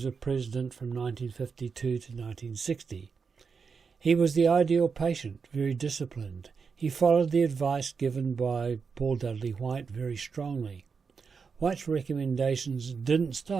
of president from 1952 to 1960. He was the ideal patient, very disciplined. He followed the advice given by Paul Dudley White very strongly. White's recommendations didn't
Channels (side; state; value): left; quieter; 5.5 dB